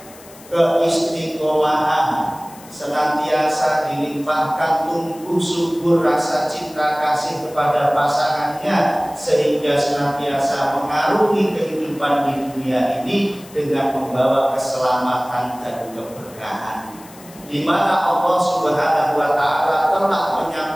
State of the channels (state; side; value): noise; left; hiss, 21 dB below the sound